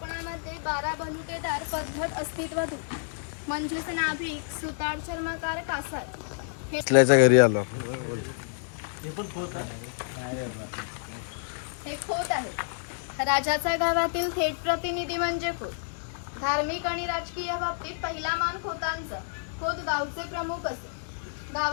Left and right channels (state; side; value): silent; right; digital silence